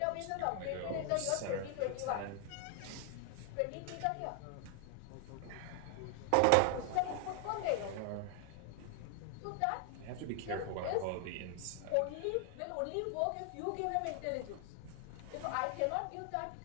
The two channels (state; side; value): different; both; correlation 0.00